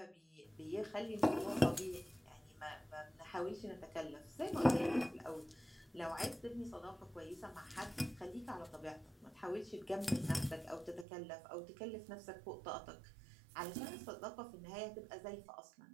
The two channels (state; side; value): drops out; left; at 11.1 s